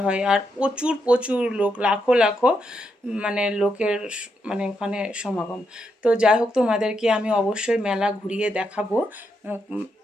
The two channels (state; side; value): normal; both; correlation 0.81